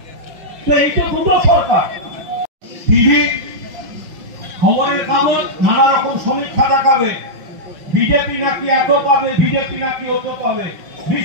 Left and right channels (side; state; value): left; late; 5.6 ms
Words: তো এই তো দুটো সরকার। টিভি খবরের কাগজ নানা রকম সমীক্ষা দেখাবে, বিজেপি নাকি এত পাবে, বিজেপি নাকি অত পাবে।